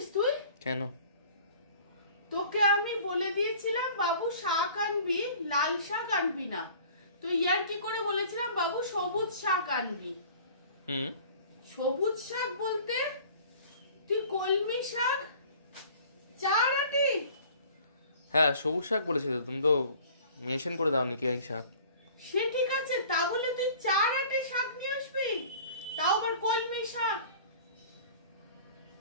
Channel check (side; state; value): both; inverted; correlation -0.48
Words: তুই? কেন? তোকে আমি বলে দিয়েছিলাম বাবু শাক আনবি, লাল শাক আনবি না। তুই ইয়ার কি করে বলেছিলাম বাবু সবুজ শাক আনবি। সবুজ শাক বলতে তুই কলমি শাক, চার আটি। হ্যাঁ সবুজ শাক বলেছিল, তুমি তো মেনশন করে দাওনি কি এই শাক। সে ঠিক আছে, তা বলে তুই চার আটি শাক নিয়ে আসবি, তাও আবার কলমি শাক।